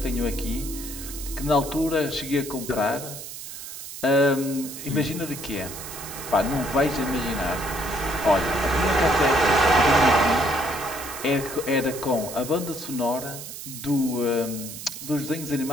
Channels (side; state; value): right; noise; hiss, 11 dB below the sound